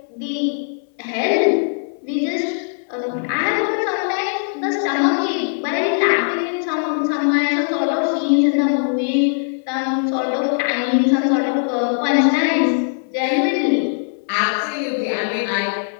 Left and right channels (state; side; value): silent; right; 60 dB below the other